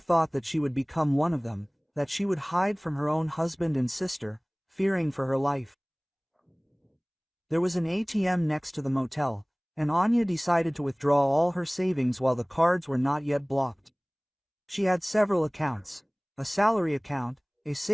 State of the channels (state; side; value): identical; both; correlation 1.00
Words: that she would become one of them, that she would hide from her own husband and sister, fearing for her life. There was an ATM next to the motel, and Anya decided to withdraw all her savings while the cards were not yet blocked. She had several accounts, a salary account, a